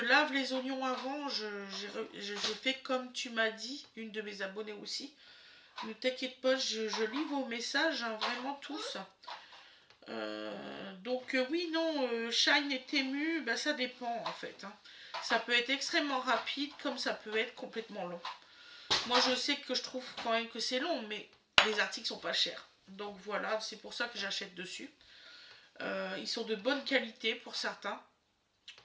les oignons avant. Je fais comme tu m'as dit, une de mes abonnées aussi. Ne t'inquiète pas, je lis vos messages, hein, vraiment tous. Donc oui, non, Shein et Temu, bah, ça dépend en fait. Hein. Ça peut être extrêmement rapide, comme ça peut être complètement long. Moi, je sais que je trouve quand même que c'est long, mais les articles sont pas chers. Donc voilà, c'est pour ça que j'achète dessus. Ils sont de bonne qualité pour certains.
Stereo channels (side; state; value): both; identical; correlation 1.00